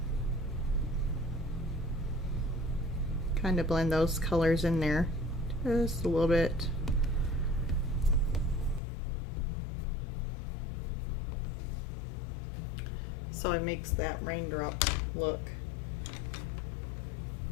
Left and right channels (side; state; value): right; drops out; at 8.8 s